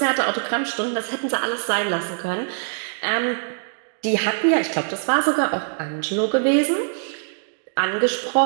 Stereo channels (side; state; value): left; silent; digital silence